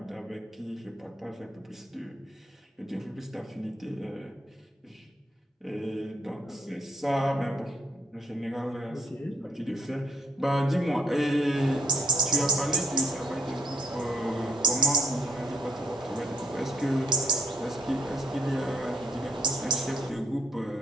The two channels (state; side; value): normal; both; correlation 0.65